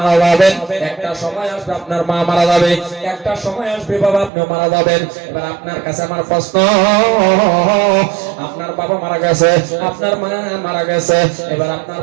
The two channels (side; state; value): left; drops out; at 4.3 s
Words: যাবেন, একটা সময় আসবে আপনার মা মারা যাবে, একটা সময় আসবে বাবা আপনিও মারা যাবেন। এবার আপনার কাছে আমার প্রশ্ন, আপনার বাবা মারা গেছে, আপনার মা মারা গেছে, এবার আপনার